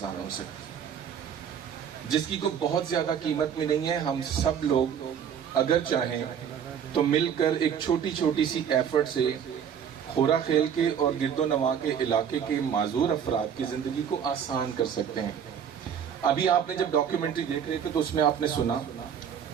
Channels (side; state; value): left; quieter; 8.2 dB